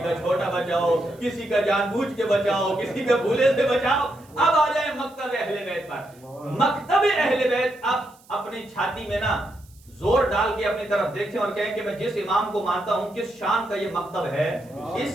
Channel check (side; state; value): right; noise; hiss, 28 dB below the sound